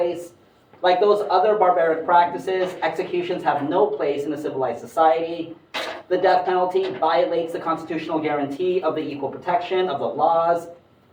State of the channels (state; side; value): identical; both; correlation 1.00